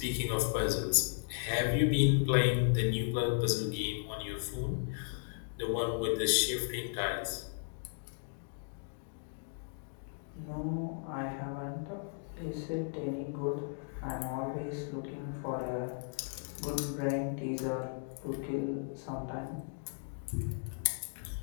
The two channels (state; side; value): silent; right; digital silence